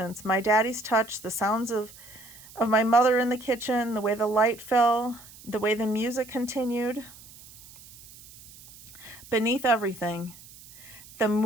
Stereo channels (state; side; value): noise; right; hiss, 20 dB below the sound